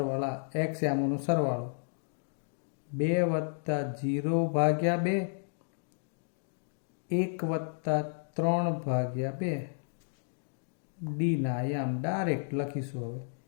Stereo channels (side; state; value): right; silent; digital silence